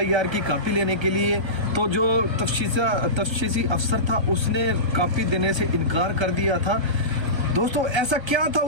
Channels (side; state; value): left; late; 1.3 ms